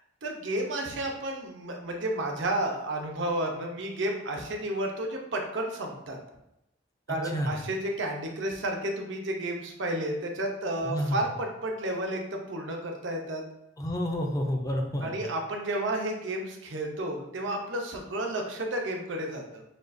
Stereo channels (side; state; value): both; normal; correlation 0.20